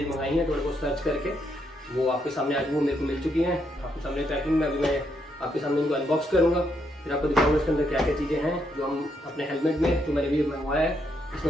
मंगाई हैं, थोड़े बहुत सर्च करके वो आपके सामने आज वो मेरे को मिल चुकी हैं आपके सामने ट्रैकिंग में। अभी मैं आपके सामने इनको अनबॉक्स करूँगा, फिर आपको दिखाऊंगा इसके अंदर क्या क्या चीज़ें हैं जो हम अपने हेलमेट में जो मैंने भी मंगवाया है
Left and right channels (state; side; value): normal; both; correlation 0.77